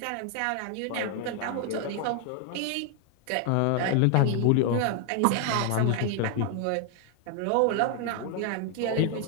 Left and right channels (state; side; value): different; both; correlation 0.00